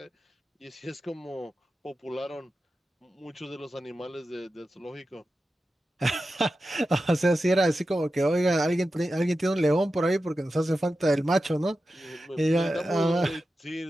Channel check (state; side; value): normal; both; correlation 0.92